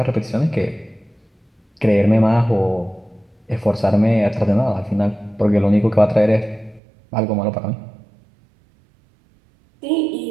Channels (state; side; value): drops out; left; at 6.8 s